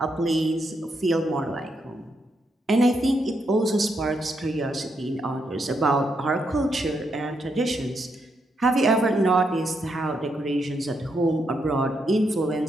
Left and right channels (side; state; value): both; normal; correlation 0.80